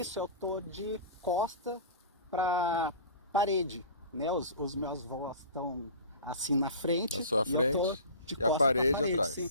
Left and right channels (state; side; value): inverted; both; correlation -0.36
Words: eu tô de costa para parede, né? Os meus avós estão assim na frente, na sua frente, de e a parede atrás. Sim.